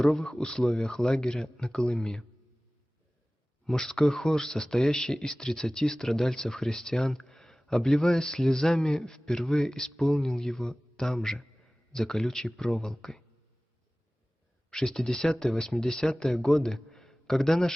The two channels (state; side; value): normal; both; correlation 0.98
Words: условиях лагеря на Колыме. Мужской хор, состоящий из 30 страдальцев-христиан, обливаясь слезами, впервые исполнил его там же, за колючей проволокой. В 60-80-е годы, когда